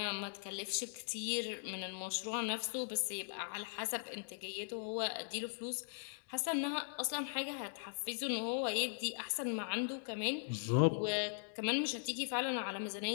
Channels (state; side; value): silent; right; digital silence